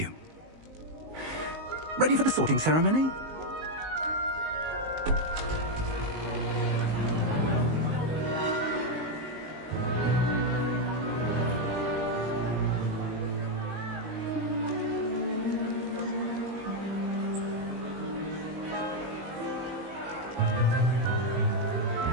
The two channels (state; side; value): late; left; 19 ms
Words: Ready for the sorting ceremony?